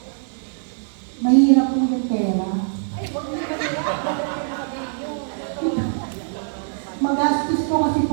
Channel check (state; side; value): silent; left; 64 dB below the other